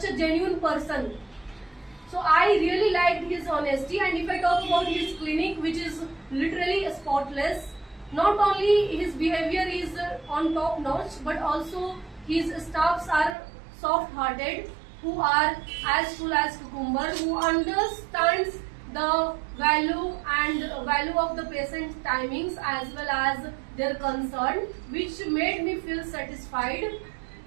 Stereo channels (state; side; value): drops out; left; at 13.4 s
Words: a genuine person. So I really liked his honesty, and if I talk about his clinic, which is literally spotless, not only his behavior is on top notch, but also his staffs are soft hearted, who are as full as cucumber, who understands the value of the patient's timings as well as their concern, which made me feel satisfied.